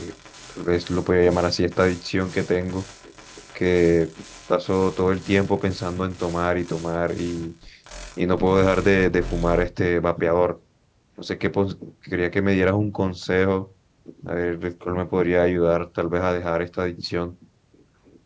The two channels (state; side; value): identical; both; correlation 1.00